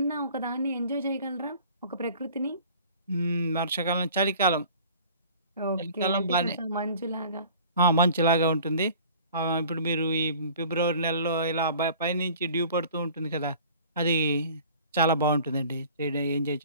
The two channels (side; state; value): both; inverted; correlation -0.47